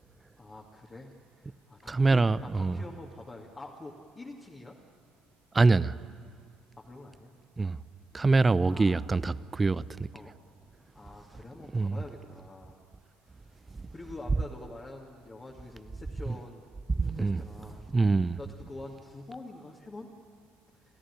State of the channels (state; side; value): quieter; left; 3.1 dB